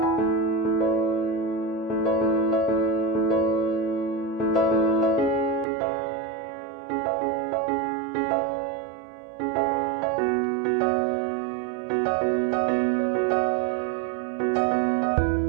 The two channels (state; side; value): drops out; left; at 5.7 s